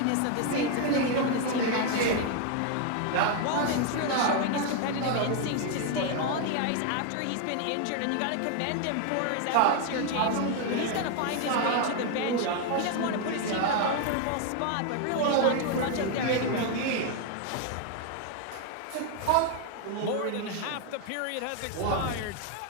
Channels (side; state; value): both; different; correlation 0.01